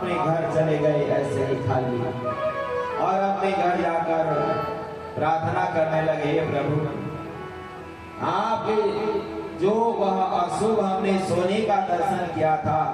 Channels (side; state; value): both; identical; correlation 1.00